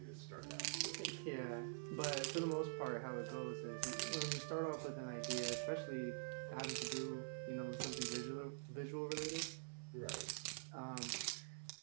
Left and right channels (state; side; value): silent; left; digital silence